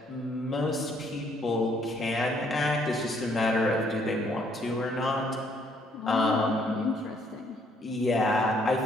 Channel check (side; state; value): both; normal; correlation 0.67